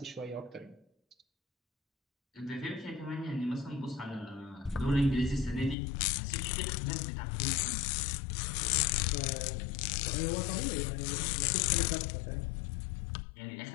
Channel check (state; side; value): drops out; right; at 5.8 s